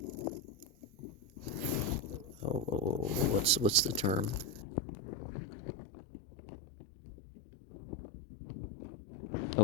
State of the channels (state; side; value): drops out; right; at 4.6 s